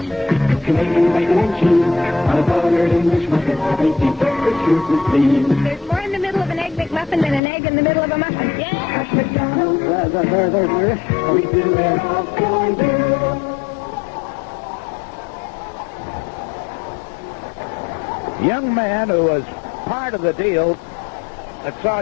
Canadian bacon and cheese on a buttered English muffin. Tasty breakfast sure to please. There's more in the middle of an Egg McMuffin than an egg in the middle of a muffin. Yeah. At McDonald's, we do it all for you. Young man who was part of the deal that saw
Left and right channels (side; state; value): right; drops out; at 7.4 s